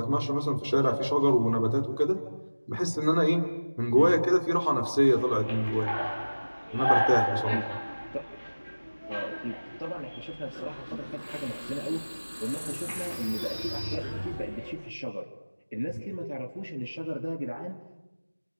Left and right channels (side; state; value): both; inverted; correlation -1.00